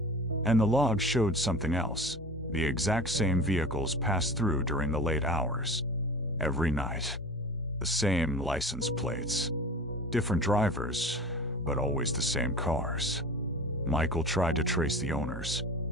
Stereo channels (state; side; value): normal; both; correlation 0.36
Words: And the logs showed something else. The exact same vehicles passed through during the late hours. Every night. The same license plates. Different drivers, but always the same cars. Michael tried to trace the owners.